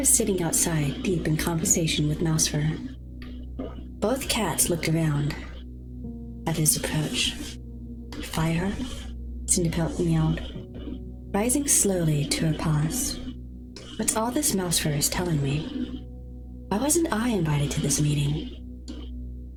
sitting outside, deep in conversation with Mousefur. Both cats looked around at his approach. Fireheart? Cinderpelt meowed, rising slowly to her paws. What's all this Mousefur is telling me? Why wasn't I invited to this meeting?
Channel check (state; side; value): identical; both; correlation 1.00